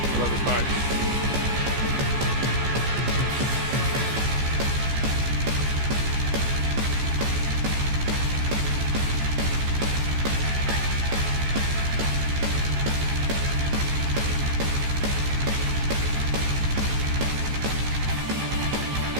Love this part.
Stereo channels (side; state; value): left; late; 15 ms